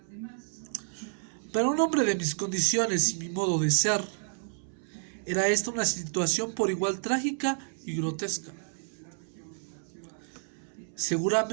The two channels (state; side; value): silent; left; 58 dB below the other